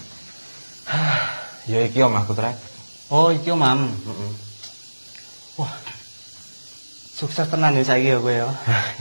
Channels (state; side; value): inverted; both; correlation -1.00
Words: Ya iki omahku, Trek. Oh, iki Mam. Wah. Sukses tenan ya saiki ya kowe ya.